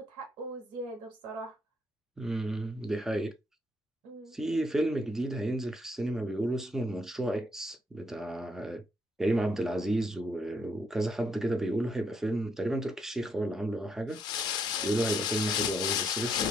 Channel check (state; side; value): normal; both; correlation 0.74